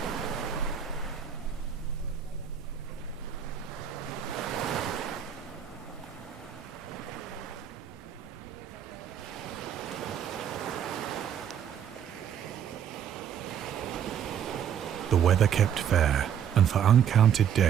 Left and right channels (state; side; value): quieter; left; 8.7 dB